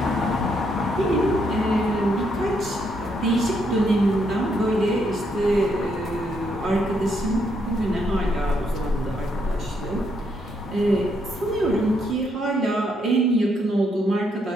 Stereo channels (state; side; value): normal; both; correlation 0.75